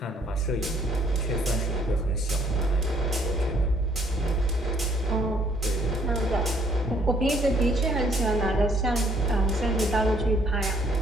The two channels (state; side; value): normal; both; correlation 0.64